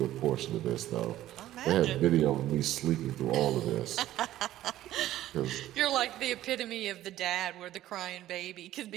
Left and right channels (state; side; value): quieter; left; 14.0 dB